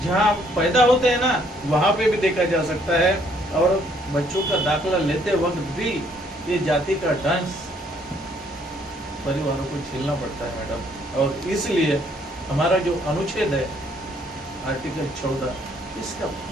जहाँ पैदा होते हैं ना, वहाँ पे भी देखा जा सकता है। और बच्चों का दाखला लेते वक्त भी ये जाति का डांस परिवारों को झेलना पड़ता है मैडम। और इसलिए हमारा जो अनुच्छेद है आर्टिकल 14, इसका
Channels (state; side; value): normal; both; correlation 0.66